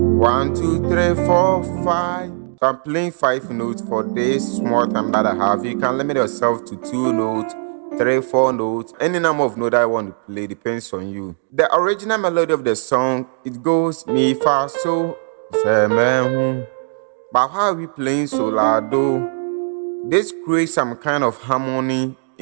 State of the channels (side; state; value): left; silent; digital silence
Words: 1 2 3 4 5. So I'm playing 5 notes for this small time that I have. You can limit yourself to 2 notes, 3, 4 notes. Any number of notes I want to play depends on you. The original melody of the song, it goes mi, fa, so, samamu. But how are we playing so loud though? This creates some kind of harmony